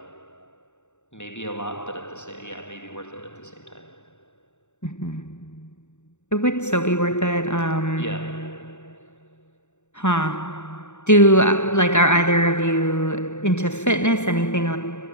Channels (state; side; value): late; right; 0.84 ms